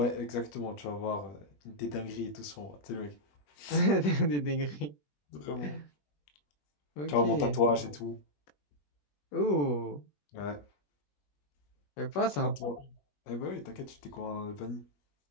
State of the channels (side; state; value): right; late; 21 ms